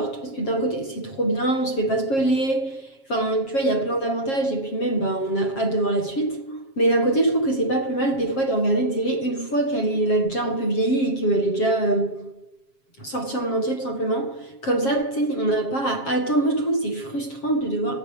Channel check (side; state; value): right; late; 7.4 ms